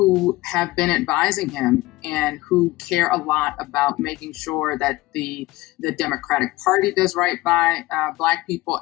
have been advising him and who care a lot about making sure that the Democratic Party does right by Black people,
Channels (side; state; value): right; quieter; 19.1 dB